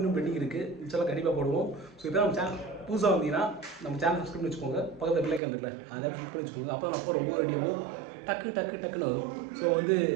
பெண்டிங் இருக்குது. இன்ஷால்லா கண்டிப்பாக போடுவோம். ஸோ இப்போ நம்ம சேனல் புதுசாக வந்தீங்கன்னா நம்ம சேனல் சப்ஸ்கிரைப் பண்ணி வச்சுக்கோங்க. பக்கத்தில் பிள்ளைக்கு வந்துக்கல அதை கிளிக் பண்ணி வச்சுக்கோங்க. அப்போ நம்ம போகிற ஒவ்வொரு வீடியோவும் டக்குன்னு வரும். ஸோ வந்து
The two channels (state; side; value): drops out; left; at 5.4 s